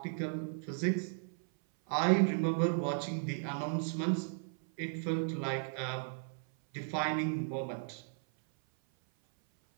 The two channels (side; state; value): left; silent; 54 dB below the other